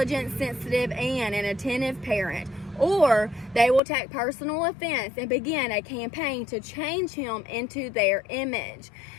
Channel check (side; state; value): right; drops out; at 3.8 s